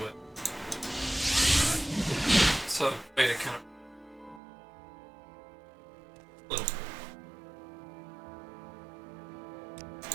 with. So way to kind of little.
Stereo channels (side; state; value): left; drops out; at 4.4 s